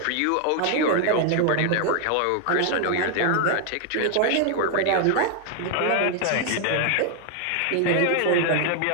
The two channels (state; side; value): different; both; correlation 0.00